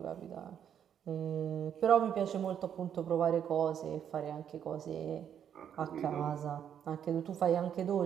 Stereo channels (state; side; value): quieter; left; 8.9 dB